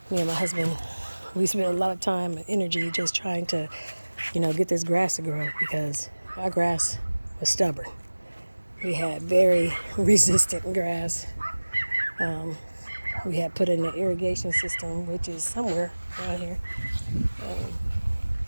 Me and my husband, we spent a lot of time and energy just trying to, get this grass to grow, because our grass was stubborn. We had very resistant grass. We had put in an irrigation system, which is somewhere around here.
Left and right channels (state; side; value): inverted; both; correlation -1.00